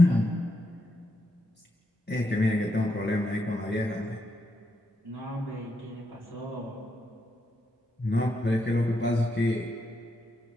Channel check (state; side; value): normal; both; correlation 0.82